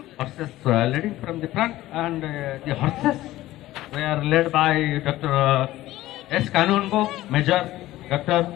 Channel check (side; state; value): right; quieter; 15.9 dB